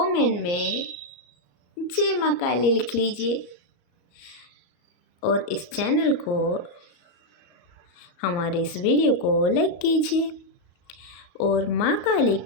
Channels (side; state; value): right; late; 34 ms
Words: में जय माँ काली लिख लीजिए। और इस चैनल को, हमारे इस वीडियो को लाइक कीजिए और माँ काली